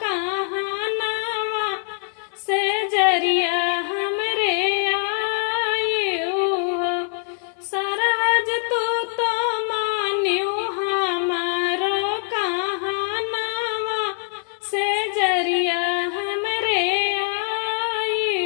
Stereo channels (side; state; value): right; silent; 60 dB below the other